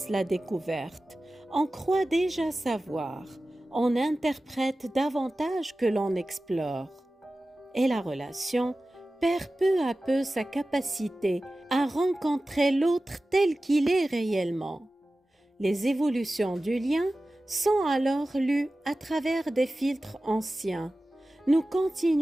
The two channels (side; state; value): both; normal; correlation 0.96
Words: la découverte. On croit déjà savoir, on interprète davantage que l'on explore. Et la relation perd peu à peu sa capacité à rencontrer l'autre tel qu'il est réellement. Les évolutions du lien sont alors lues à travers des filtres anciens. Nous